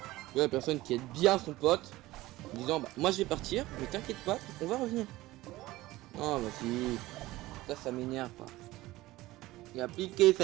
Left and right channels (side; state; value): left; quieter; 18.0 dB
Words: La personne qui aide bien son pote. En disant, bah, moi je vais partir, mais t'inquiète pas, on va revenir. Oh, vas-y. Ça m'énerve pas. Il a appliqué